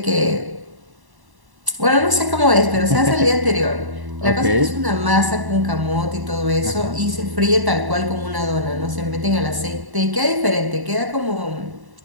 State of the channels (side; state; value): left; late; 1.1 ms